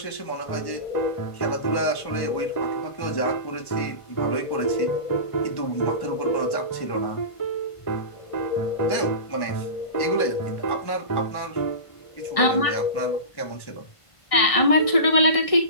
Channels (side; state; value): right; late; 1.6 ms